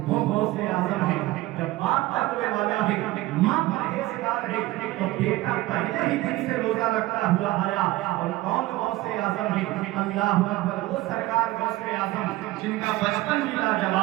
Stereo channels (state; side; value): quieter; left; 18.1 dB